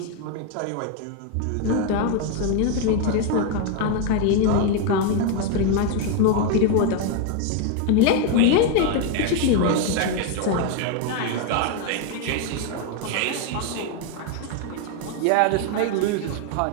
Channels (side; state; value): both; different; correlation 0.01